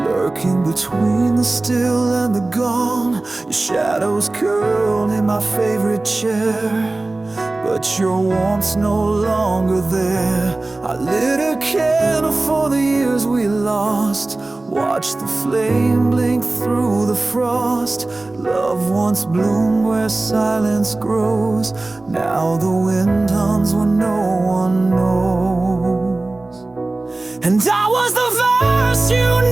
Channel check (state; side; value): quieter; left; 3.0 dB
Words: between the still and the gone. Your shadows curled in my favorite chair, but your warmth's no longer there. I lit a candle for the years we lost, watched the flame blink through the frost. Love once bloomed where silence grows. Now the wind hums when no one knows. And I was the verse you